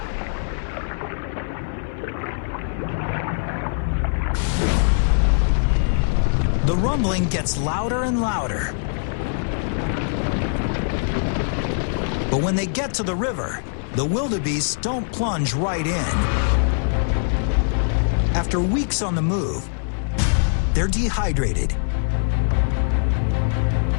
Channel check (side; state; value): right; silent; digital silence